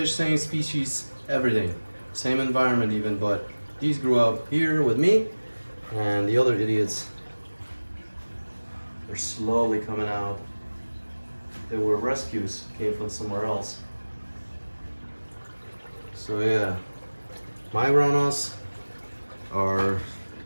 same species, everything, same environment even, but these grew up here with me, and the other idiots, they're slowly coming out. They were rescues, came from somewhere else. So yeah, my Ranas are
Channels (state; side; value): inverted; both; correlation -1.00